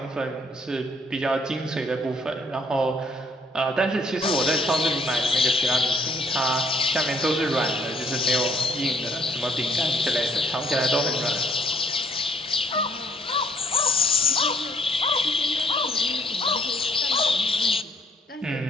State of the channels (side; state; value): both; normal; correlation 0.64